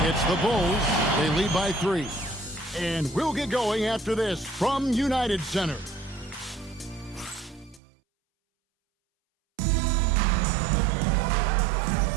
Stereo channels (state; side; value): drops out; left; at 7.8 s